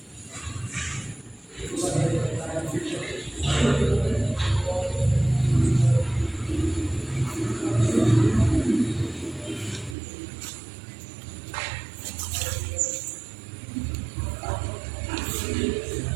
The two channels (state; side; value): drops out; left; at 10.0 s